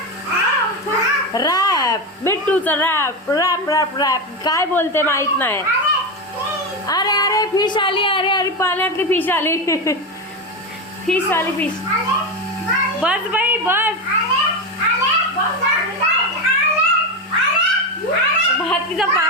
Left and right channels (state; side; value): normal; both; correlation 0.14